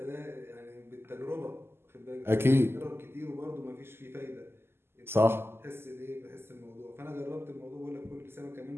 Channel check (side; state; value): left; late; 0.12 ms